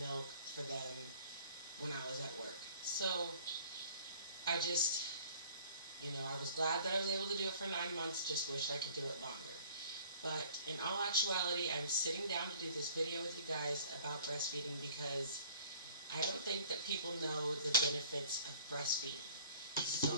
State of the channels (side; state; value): both; inverted; correlation -0.50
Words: for them when I was at work. So I just, I was glad that I was able to do it for 9 months, just wished I could do it longer. But in all actuality, I'm sitting down to do this video with you guys about breastfeeding because I don't think that people know the benefits of breastfeeding.